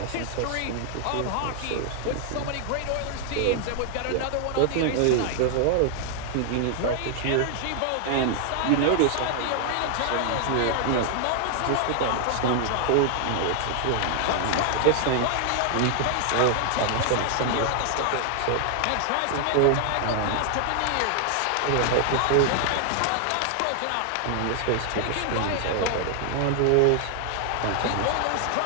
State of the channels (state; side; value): different; both; correlation 0.00